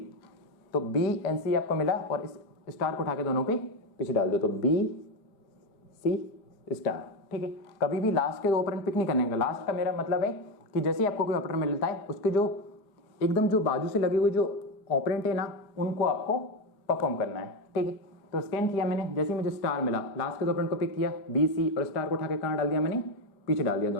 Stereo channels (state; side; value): late; right; 4.8 ms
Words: तो बी एंड सी आपको मिला और इस स्टार को उठा के दोनों के पीछे डाल दो, तो बी सी स्टार, ठीक है। कभी भी लास्ट के दो ऑपरेंड पिक नहीं करने का। लास्ट का मेरा मतलब है कि जैसे ही आपको कोई ऑपरेटर मिलता है उसके जो एकदम जो बाजू से लगे हुए जो ऑपरेंट है ना उनको आपको परफॉर्म करना है, ठीक है। तो स्कैन किया मैंने, जैसे ही मुझे स्टार मिला लास्ट के दो ऑपरेंड को पिक किया बी सी, और स्टार को उठा के कहाँ डाल दिया मैंने पीछे डाल दिया